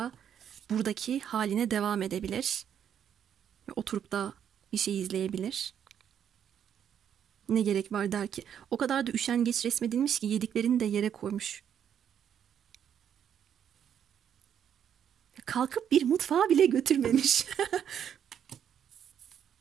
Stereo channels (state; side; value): quieter; left; 8.9 dB